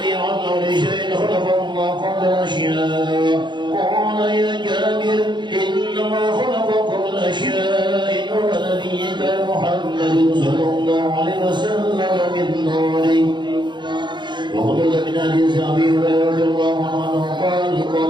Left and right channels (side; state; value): left; late; 0.22 ms